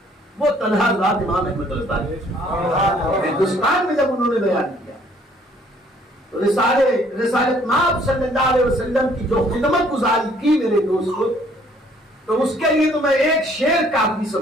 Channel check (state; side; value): normal; both; correlation 0.61